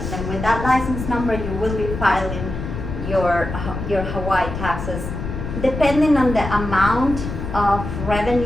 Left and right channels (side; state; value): left; noise; rumble, 6 dB below the sound